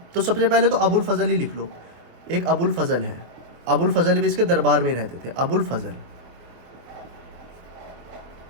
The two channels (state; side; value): late; left; 24 ms